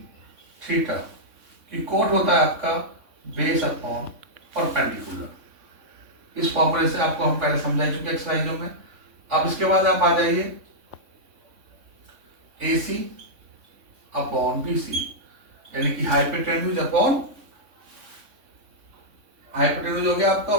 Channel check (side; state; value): left; late; 3.6 ms